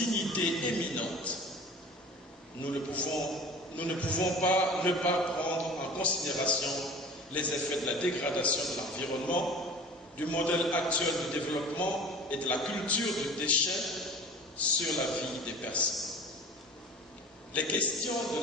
éminente. Nous ne pouvons pas ne pas prendre en considération les effets de la dégradation de l'environnement, du modèle actuel de développement et de la culture du déchet sur la vie des personnes. Les questions de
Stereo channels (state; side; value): normal; both; correlation 0.41